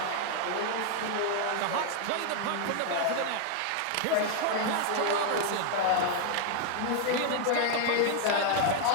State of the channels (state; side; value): different; both; correlation 0.00